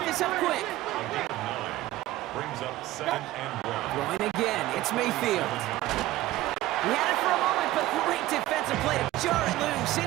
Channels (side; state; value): left; quieter; 16.1 dB